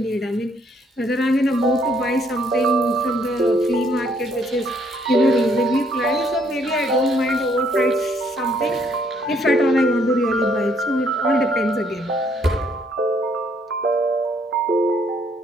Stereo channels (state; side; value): normal; both; correlation 0.67